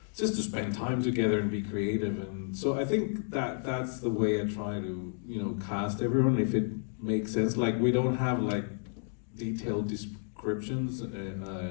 just to spend time together and be creative. And so I think that's the way I try to, you know, cast everyone, if it makes sense. Like, we don't have like detailed descriptions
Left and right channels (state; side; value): silent; right; 57 dB below the other